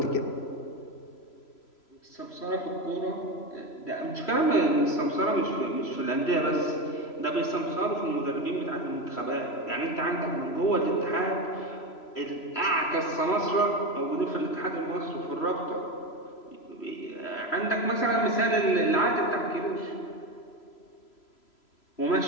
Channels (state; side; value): late; right; 3.0 ms